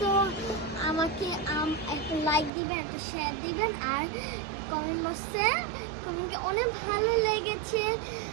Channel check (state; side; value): drops out; left; at 2.5 s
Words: তো আমাকে একটা লাইক দিবেন, একটা শেয়ার দিবেন, আর কমেন্ট বক্সে কমেন্টে অনেক ভালো লেগেছে।